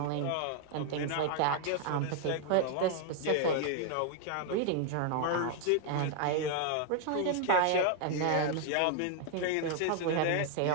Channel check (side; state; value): both; different; correlation 0.00